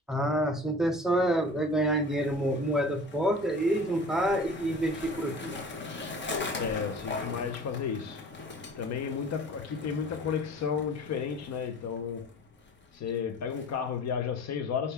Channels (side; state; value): both; normal; correlation 0.42